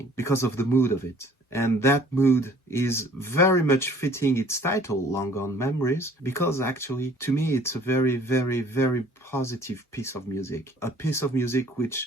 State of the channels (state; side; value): normal; both; correlation 0.55